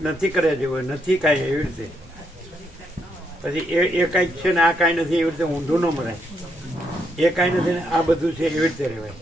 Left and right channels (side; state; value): both; normal; correlation 0.77